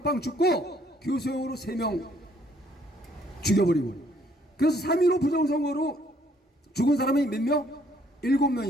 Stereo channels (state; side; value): normal; both; correlation 0.65